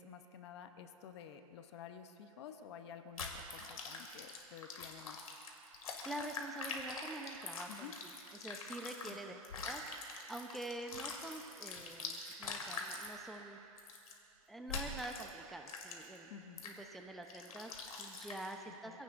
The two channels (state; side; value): normal; both; correlation 0.31